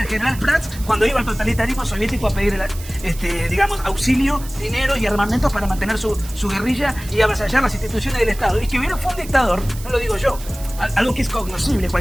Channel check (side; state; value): right; noise; hiss, 16 dB below the sound